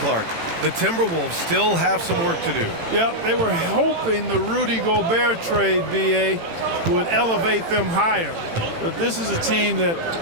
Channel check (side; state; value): left; late; 18 ms